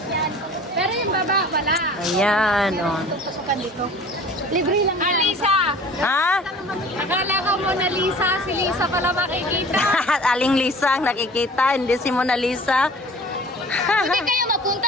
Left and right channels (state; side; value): normal; both; correlation 0.45